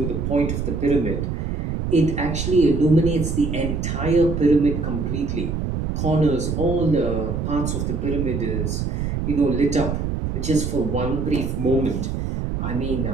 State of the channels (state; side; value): noise; right; rumble, 2 dB below the sound